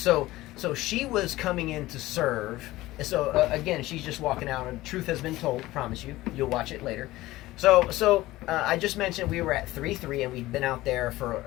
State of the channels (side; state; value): right; quieter; 17.6 dB